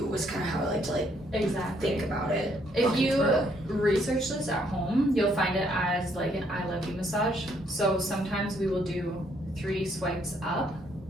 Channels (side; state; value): both; normal; correlation 0.69